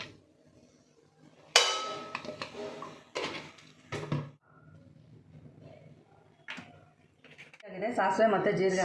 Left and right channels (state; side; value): identical; both; correlation 1.00